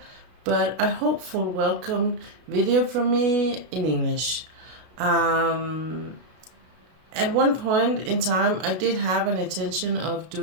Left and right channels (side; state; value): left; late; 33 ms